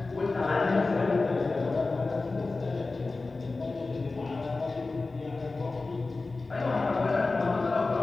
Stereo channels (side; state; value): right; quieter; 3.6 dB